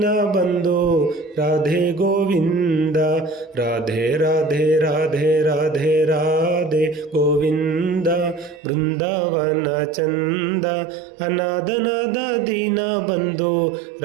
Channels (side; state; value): left; drops out; at 8.6 s